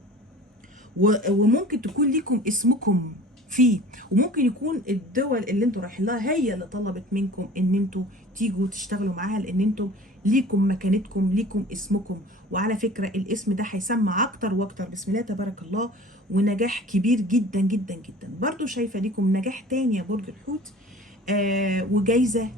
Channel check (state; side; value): normal; both; correlation 0.43